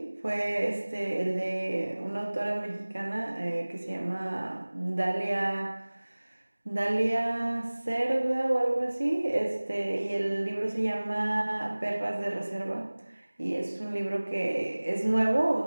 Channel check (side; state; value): both; inverted; correlation -1.00